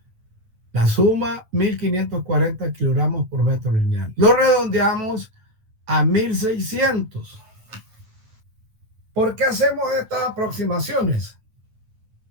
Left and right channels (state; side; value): late; left; 9.1 ms